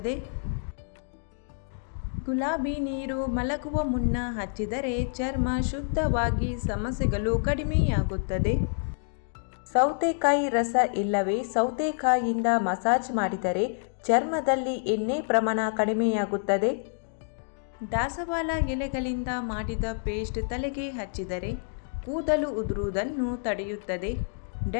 ಗುಲಾಬಿ ನೀರು ಮಲಗುವ ಮುನ್ನ ಹಚ್ಚಿದರೆ ಚರ್ಮ ಶುದ್ಧವಾಗಿ ಸಮಸ್ಯೆಗಳು ಕಡಿಮೆಯಾಗುತ್ತದೆ. ಸೌತೆಕಾಯಿ ರಸ ಇಲ್ಲವೇ ಸೌತೆಕಾಯಿಯಿಂದ ಮಸಾಜ್ ಮಾಡಿದರೆ ಚರ್ಮದಲ್ಲಿ ಎಣ್ಣೆ ಪ್ರಮಾಣ ಕಡಿಮೆಯಾಗುತ್ತದೆ. ದಾಸವಾಳ ಎಲೆಗಳಿಂದ ಮಾಡಿದ ಪೇಸ್ಟ್ ತಲೆಗೆ ಹಚ್ಚಿದರೆ ಕೂದಲು ಉದುರುವುದನ್ನು ತಡೆಯುತ್ತದೆ,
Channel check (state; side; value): silent; right; digital silence